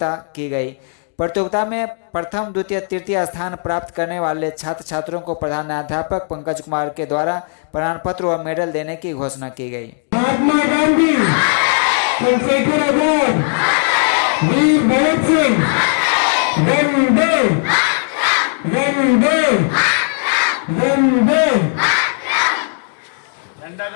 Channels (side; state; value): right; silent; 62 dB below the other